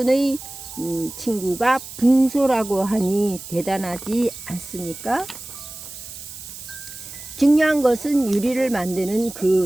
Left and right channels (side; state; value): right; noise; hiss, 13 dB below the sound